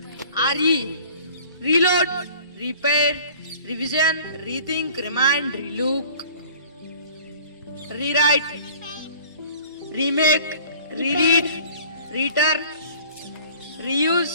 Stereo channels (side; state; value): both; inverted; correlation -0.48